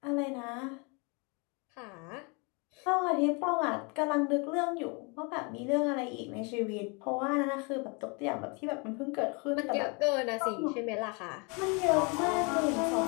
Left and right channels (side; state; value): right; quieter; 31.6 dB